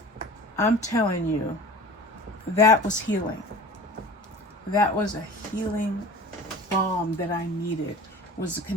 I'm telling you, that was healing. That was a healing balm that I needed, was the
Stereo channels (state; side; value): normal; both; correlation 0.39